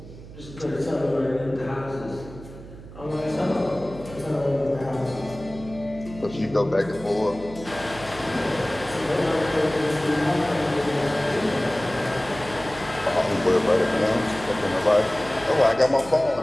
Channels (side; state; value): right; noise; hum, 16 dB below the sound